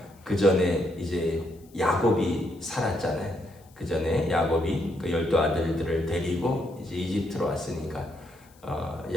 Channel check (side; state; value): left; noise; hiss, 29 dB below the sound